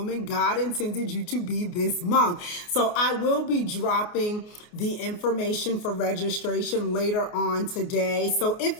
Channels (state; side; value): late; right; 29 ms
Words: God Intended You to Be this month. So I will be dropping the information for registration later on today. So if